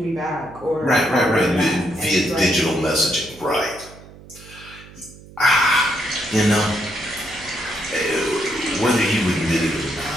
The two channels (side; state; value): right; noise; hum, 20 dB below the sound